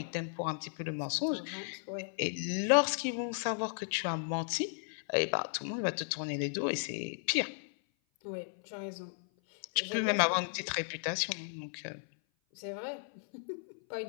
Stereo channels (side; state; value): right; silent; 55 dB below the other